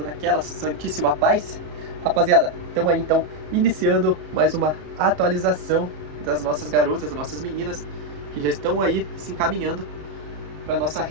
naquela santíssima paz? Rapaziada, estamos aí então iniciando mais uma atualização das nossas garotas, das nossas meninas que já estão aí se encaminhando para nossa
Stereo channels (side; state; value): left; late; 33 ms